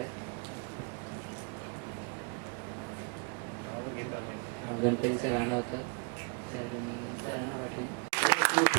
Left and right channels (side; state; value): left; quieter; 37.6 dB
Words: गणपतीचं गाणं होतं, तर मी त्यांना पाठवेन.